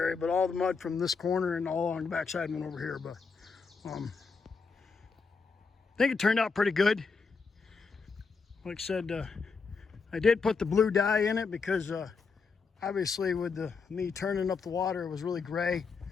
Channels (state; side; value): quieter; right; 5.0 dB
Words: area, but all the mud from this corner and all along the backside went over here. But I think it turned out pretty good. Like I said, I did put the blue dye in it because obviously with me turning up the water, it was really gray.